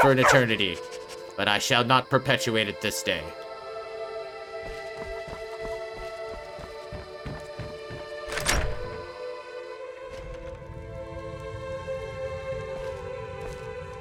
an eternity, but I shall not perpetuate it this day.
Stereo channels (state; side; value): identical; both; correlation 1.00